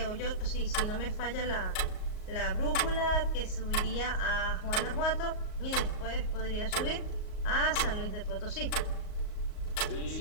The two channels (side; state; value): right; late; 38 ms